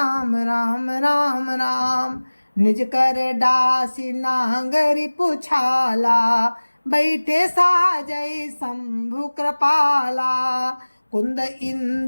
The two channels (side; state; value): both; inverted; correlation -1.00